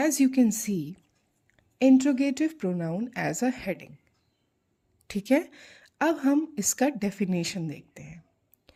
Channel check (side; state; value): both; identical; correlation 1.00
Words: you can see, interrogative pronoun as a heading. ठीक है, अब हम इसका डेफिनेशन देखते हैं।